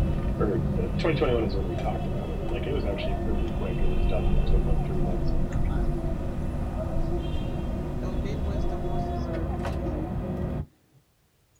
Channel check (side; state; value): both; identical; correlation 1.00